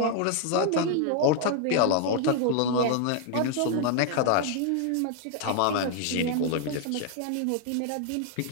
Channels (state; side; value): different; both; correlation 0.00